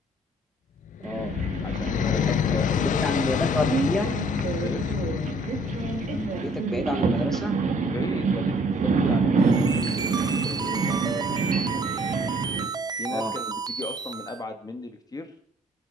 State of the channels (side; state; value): both; normal; correlation 0.60